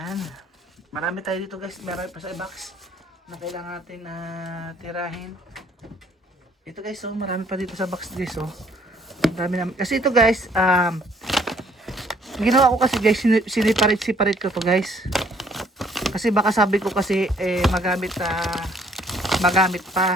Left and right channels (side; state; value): both; normal; correlation 0.62